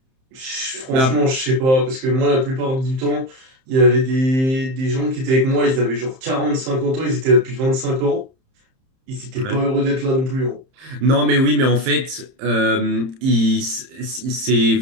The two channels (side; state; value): left; late; 31 ms